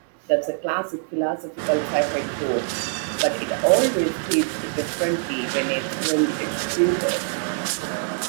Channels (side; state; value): left; silent; digital silence